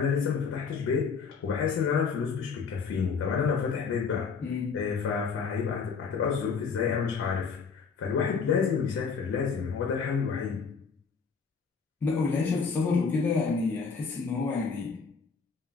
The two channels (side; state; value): right; quieter; 5.5 dB